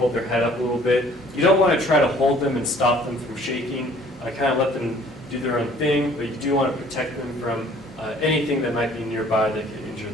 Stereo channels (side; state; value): both; normal; correlation 0.55